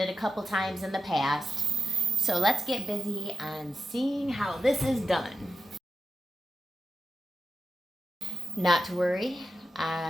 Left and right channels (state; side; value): normal; both; correlation 0.90